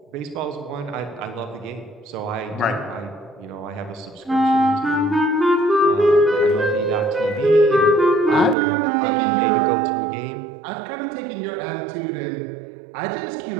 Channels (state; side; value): drops out; left; at 8.6 s